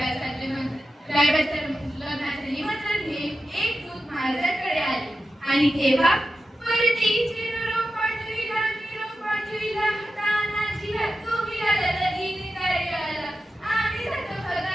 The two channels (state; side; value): normal; both; correlation 0.91